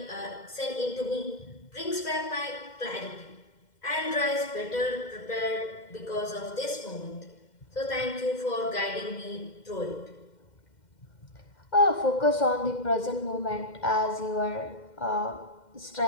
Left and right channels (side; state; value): right; late; 2.1 ms